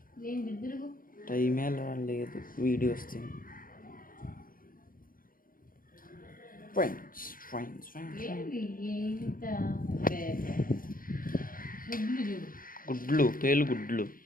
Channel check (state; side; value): late; right; 0.41 ms